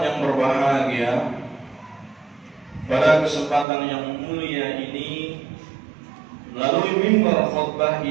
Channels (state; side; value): drops out; left; at 3.7 s